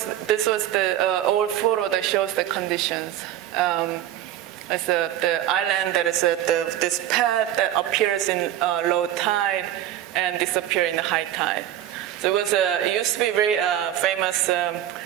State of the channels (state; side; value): quieter; left; 12.0 dB